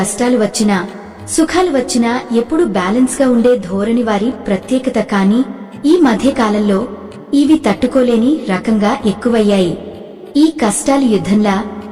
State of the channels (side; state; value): both; identical; correlation 1.00